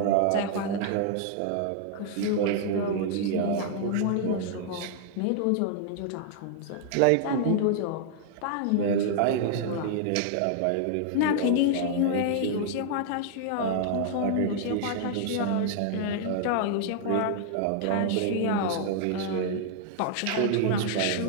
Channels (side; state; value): both; different; correlation 0.00